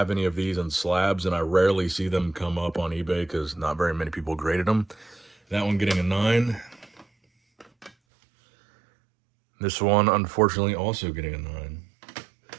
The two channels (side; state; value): left; drops out; at 7.9 s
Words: any of these in slabs, and I rarely see them come up on eBay because not very many people graded them. That one getting a 9. This one, unfortunately, also getting a 9.